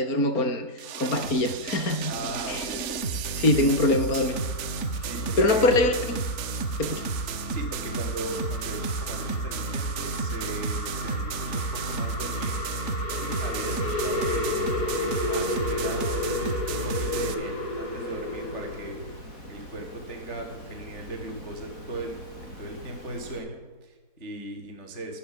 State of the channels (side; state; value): right; late; 3.5 ms